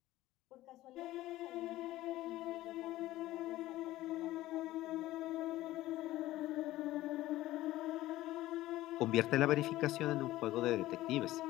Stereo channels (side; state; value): right; quieter; 16.1 dB